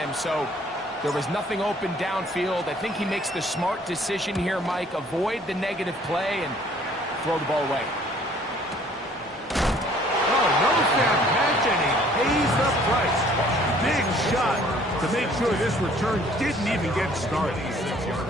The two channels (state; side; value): normal; both; correlation 0.57